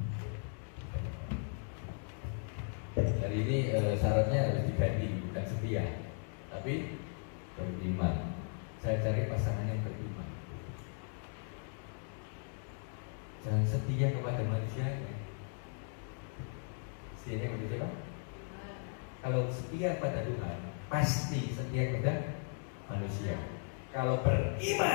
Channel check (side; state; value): right; silent; 53 dB below the other